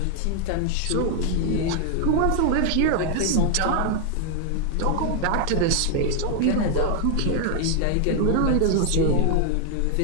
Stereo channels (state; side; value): different; both; correlation 0.00